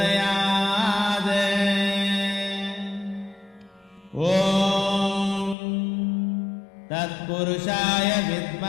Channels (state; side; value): drops out; right; at 5.6 s